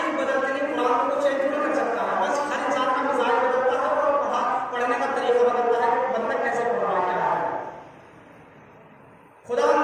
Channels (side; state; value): both; identical; correlation 1.00